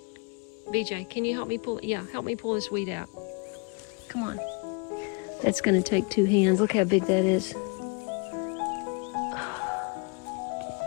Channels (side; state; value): right; quieter; 33.2 dB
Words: BJ, can you help me pull, yeah, help me pull this weed out. Come on. That's gonna take 2 hands. Look how big that is.